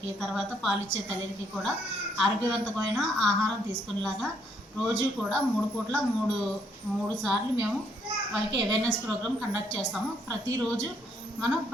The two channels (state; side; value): normal; both; correlation 0.71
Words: తర్వాత పాలిచ్చే తల్లికి కూడా ఆరోగ్యవంతమైన ఆహారం తీసుకునేలాగా రోజు కూడా 3 పూట్ల 3 సార్లు మేము వాళ్ళకి అవేర్నెస్ ప్రోగ్రామ్ కండక్ట్ చేస్తాము. ప్రతిరోజు మనం